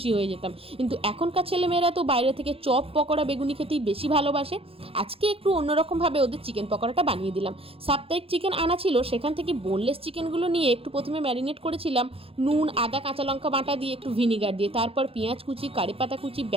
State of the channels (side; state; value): left; late; 0.27 ms